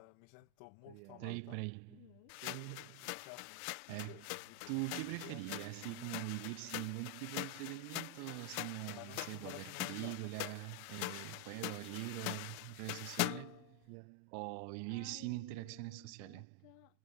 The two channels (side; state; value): both; different; correlation 0.00